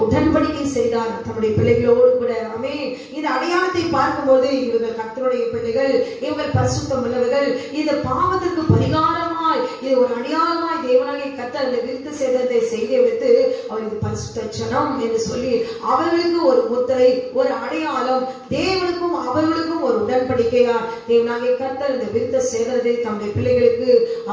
உடன்படிக்கை செய்தார் தம்முடைய பிள்ளைகளோடு கூட. ஆமென். இந்த அடையாளத்தை பார்க்கும்போது இவர்கள் கர்த்தருடைய பிள்ளைகள், இவர்கள் பரிசுத்தம் உள்ளவர்கள், இந்த பாவத்திற்கு பரிகாரமாய் இது ஒரு அடையாளமாய் தேவனாகிய கர்த்தர் இந்த விருத்த சேதனத்தை செய்து வைத்து அவர் இது பரிசுத்த ஜனம் என்று சொல்லி அவர்களுக்கு ஒரு முத்திரை, ஒரு அடையாளம், தேவனுக்கும் அவர்களுக்கும் ஒரு உடன்படிக்கையா தேவனாகிய கர்த்தர் இந்த விருத்த சேதனத்தை தம்முடைய பிள்ளைகளுக்கு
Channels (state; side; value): identical; both; correlation 1.00